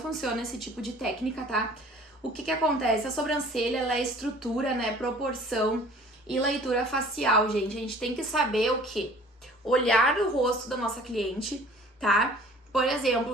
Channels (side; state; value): both; normal; correlation 0.49